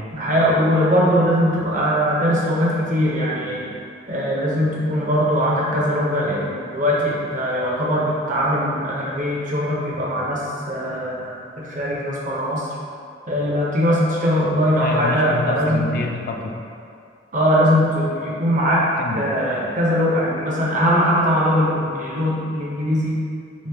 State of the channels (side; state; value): both; normal; correlation 0.45